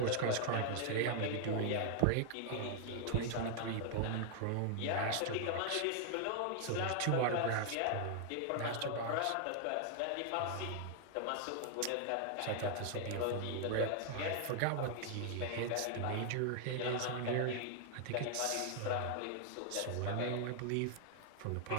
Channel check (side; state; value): both; different; correlation 0.00